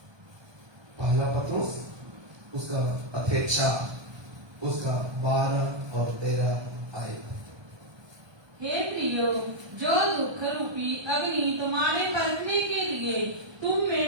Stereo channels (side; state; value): left; late; 1.2 ms